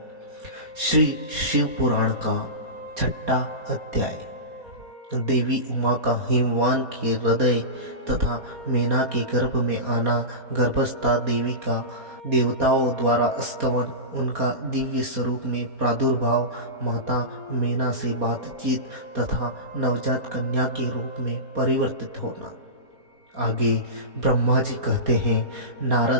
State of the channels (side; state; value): left; late; 4.2 ms